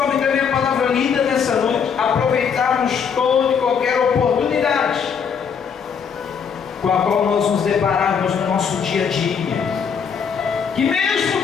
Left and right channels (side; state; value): right; quieter; 6.8 dB